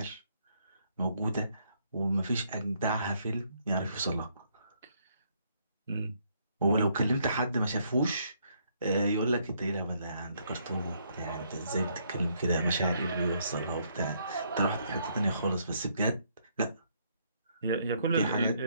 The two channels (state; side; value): inverted; both; correlation -0.70